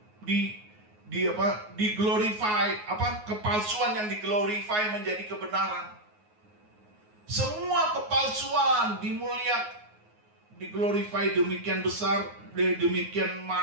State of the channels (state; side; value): late; left; 9.5 ms